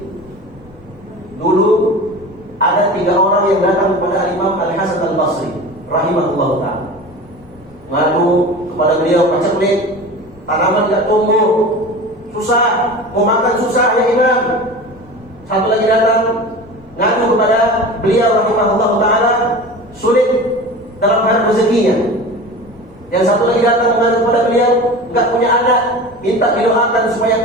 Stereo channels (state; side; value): normal; both; correlation 0.34